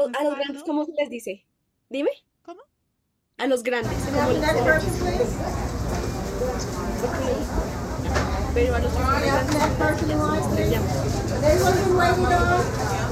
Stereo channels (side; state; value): both; identical; correlation 1.00